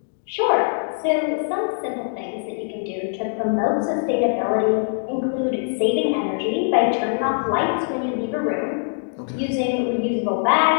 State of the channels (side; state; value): right; silent; digital silence